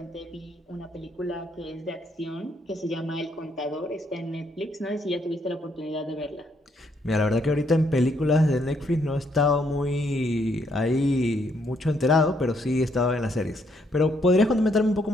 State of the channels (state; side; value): normal; both; correlation 0.72